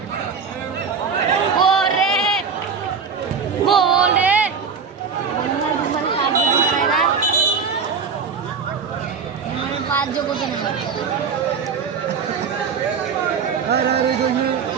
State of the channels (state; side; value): quieter; left; 5.9 dB